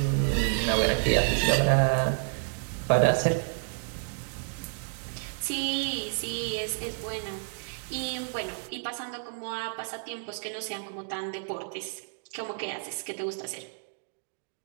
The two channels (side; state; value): left; silent; 58 dB below the other